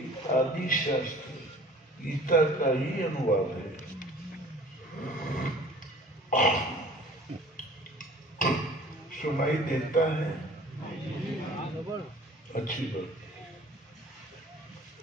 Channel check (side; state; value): both; normal; correlation 0.47